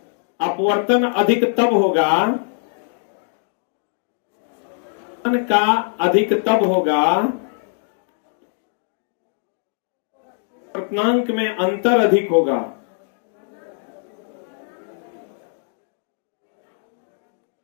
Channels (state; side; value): silent; right; 63 dB below the other